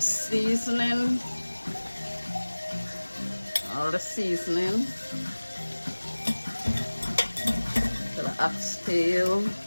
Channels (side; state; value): both; inverted; correlation -1.00